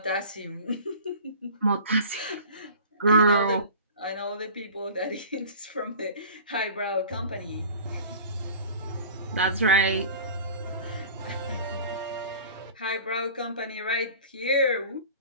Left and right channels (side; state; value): both; inverted; correlation -0.40